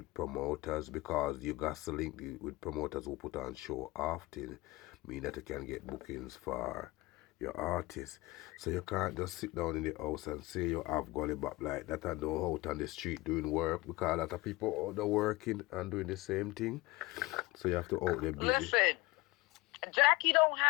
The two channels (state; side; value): quieter; right; 21.7 dB